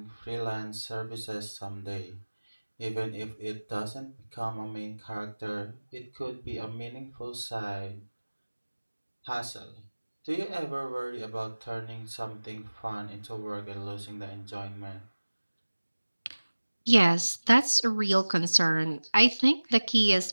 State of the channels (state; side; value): inverted; both; correlation -1.00